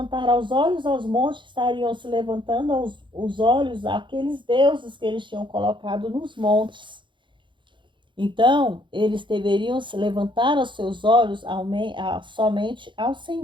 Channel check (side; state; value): left; late; 0.23 ms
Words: os olhos aos montes, estariam se levantando os olhos àqueles deuses que eles tinham colocado nos montes. Então, eles deveriam se levantar os seus olhos somente ao